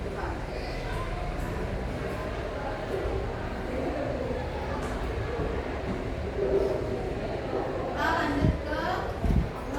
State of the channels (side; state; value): both; identical; correlation 1.00